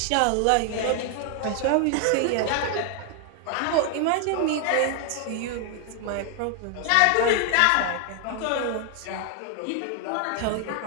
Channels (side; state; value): both; different; correlation 0.00